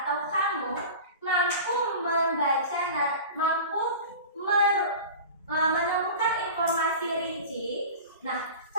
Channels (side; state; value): both; inverted; correlation -0.35